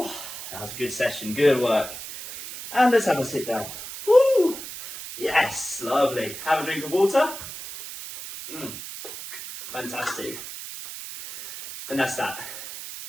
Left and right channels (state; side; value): noise; right; hiss, 10 dB below the sound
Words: That was a good session. Good work. And let's have a sit down. Woo. Yes. Lovely. Have a drink of water. Fantastic. And that's that.